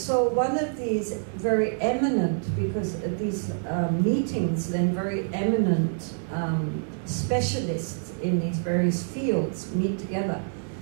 one of these very eminent, because these meetings, then very eminent specialists in these various fields meet together.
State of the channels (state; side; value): silent; left; digital silence